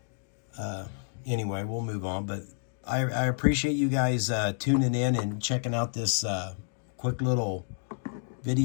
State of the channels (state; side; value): silent; right; digital silence